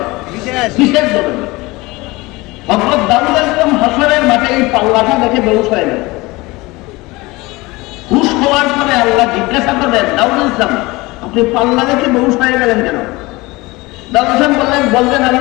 বিশেষ ধরনের। হযরত দাউদ আলাইহিস হাসরের মাঠে এই পাল্লাটা দেখে বেহুশ হয়ে গেল। হুশ হওয়ার পরে আল্লাহ জিজ্ঞাসা করলেন, দাউদ আলাইহিস সালাম আপনি পাল্লা দেখে বেহুশ হয়ে গেলেন কেন? দাউদ আলাইহিস সালাম বললেন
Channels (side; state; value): right; quieter; 22.1 dB